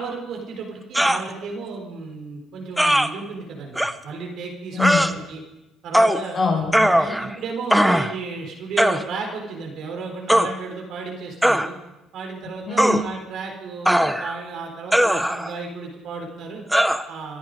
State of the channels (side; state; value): both; normal; correlation 0.93